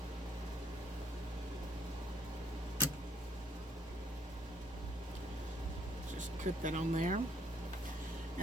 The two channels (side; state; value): both; normal; correlation 0.66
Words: Put that on there.